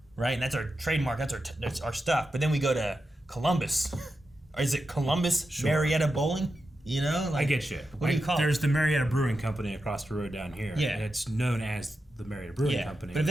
right, and that's our trademark, that's our stuff, but then we go to Columbus, or is it Columbus Marietta Bowling? Like, I get you. What do you call it? There's the Marietta Brewing Company across the road down here. Yeah. And it's known as the Marietta Brewing Company. But if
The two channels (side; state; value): both; normal; correlation 0.89